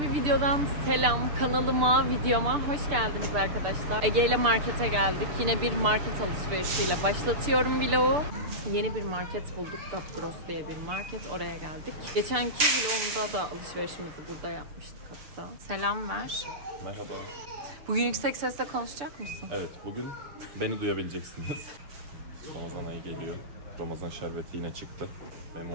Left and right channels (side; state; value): left; late; 6.8 ms